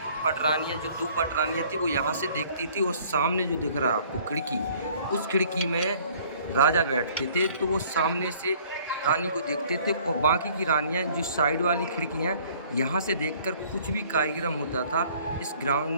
पटरानियाँ, जो 2 पटरानियाँ थी, वो यहाँ से देखती थी। और सामने जो दिख रहा है आपको खिड़की, उस खिड़की में राजा बैठते थे, तो वो सामने से रानी को देखते थे। और बाकी की रानियाँ जो साइड वाली खिड़कियाँ, यहाँ से देखकर कुछ भी कार्यक्रम होता था इस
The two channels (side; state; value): both; inverted; correlation -0.56